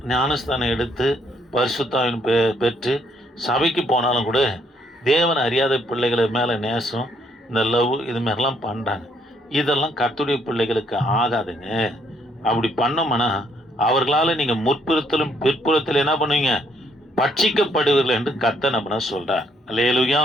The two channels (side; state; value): both; normal; correlation 0.69